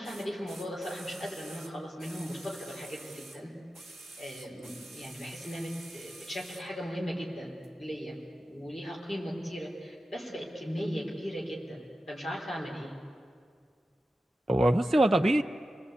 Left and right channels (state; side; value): normal; both; correlation 0.93